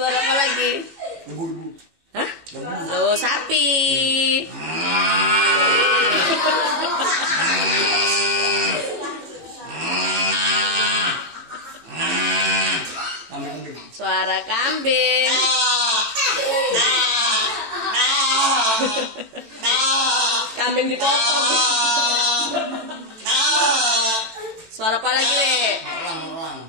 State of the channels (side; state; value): left; late; 18 ms